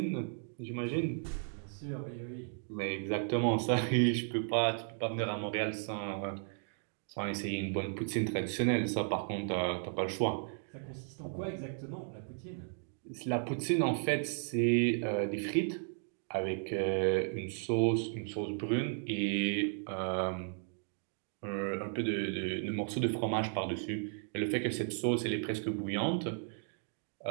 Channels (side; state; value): left; silent; 54 dB below the other